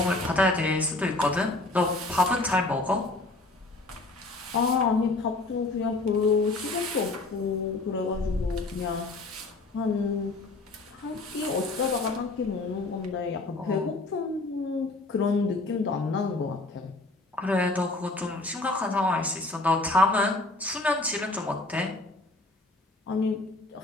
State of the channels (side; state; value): right; quieter; 3.1 dB